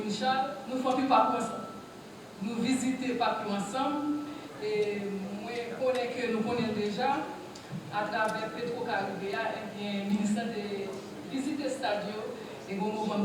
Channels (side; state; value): both; identical; correlation 1.00